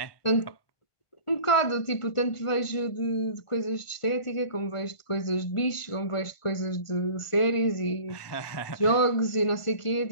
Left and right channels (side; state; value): right; late; 1.5 ms